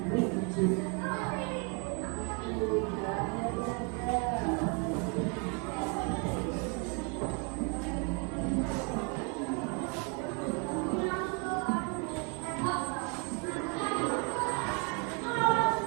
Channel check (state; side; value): quieter; left; 35.3 dB